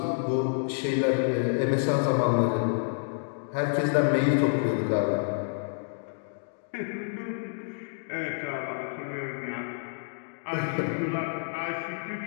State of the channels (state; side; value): silent; right; digital silence